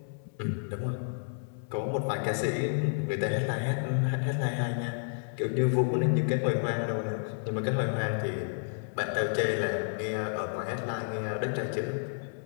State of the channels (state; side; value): silent; right; 57 dB below the other